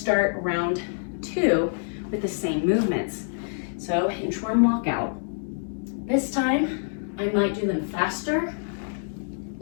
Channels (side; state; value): right; silent; digital silence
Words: round 2 with the same movements. So inchworm walkout. This time, I might do them faster.